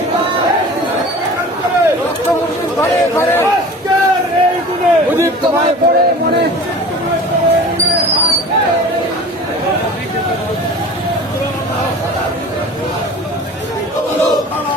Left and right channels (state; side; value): normal; both; correlation 0.40